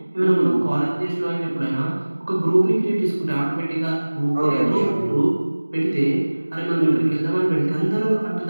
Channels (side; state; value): both; inverted; correlation -1.00